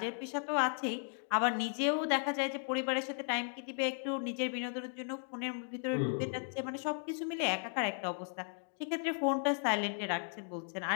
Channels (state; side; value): silent; right; 54 dB below the other